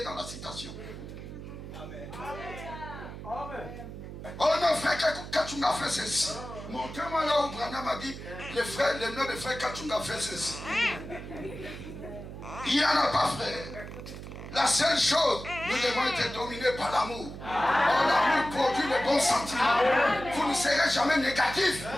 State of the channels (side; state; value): right; noise; hum, 11 dB below the sound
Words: dans la citation. Amen. Oh non, frère Kachunga fait ceci. Montrez-moi là où Branham a dit le nom de frère Kachunga fait ceci. Il n'y en a pas, frère. La seule chose, nous devons être dominés par l'amour. Oh, l'amour produit le bon sentiment. Vous ne serez jamais négatif,